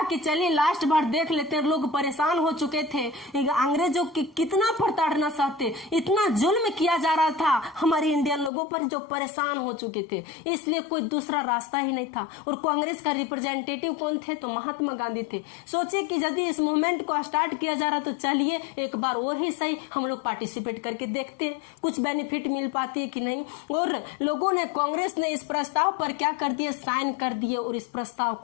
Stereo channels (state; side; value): drops out; right; at 8.5 s